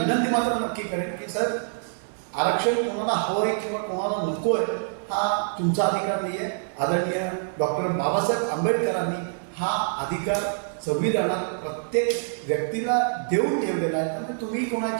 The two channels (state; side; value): silent; left; digital silence